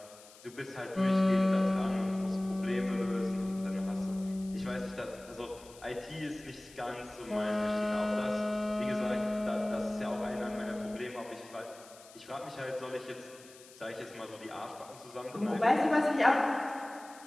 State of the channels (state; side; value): noise; left; hiss, 21 dB below the sound